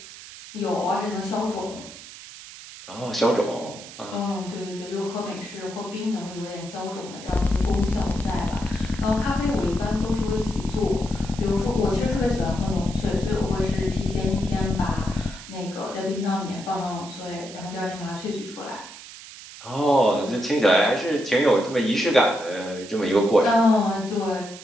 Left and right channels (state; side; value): noise; right; hiss, 15 dB below the sound